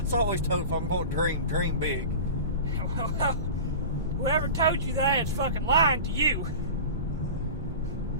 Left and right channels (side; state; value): both; inverted; correlation -0.33